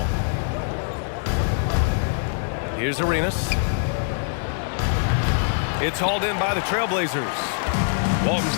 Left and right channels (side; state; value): right; silent; digital silence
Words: Here's Arenas. It's hauled in by the Trailblazers. Walton's